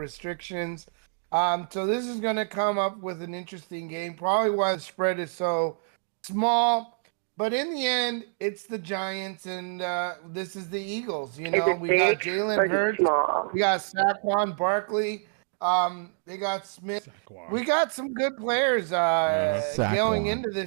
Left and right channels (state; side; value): silent; left; digital silence